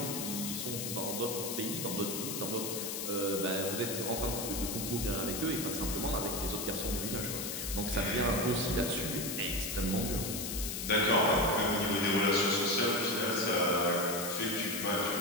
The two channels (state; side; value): noise; left; hiss, 4 dB below the sound